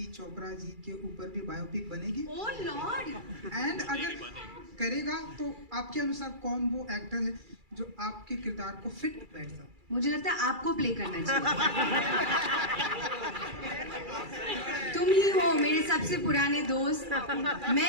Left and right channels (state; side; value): late; left; 2.3 ms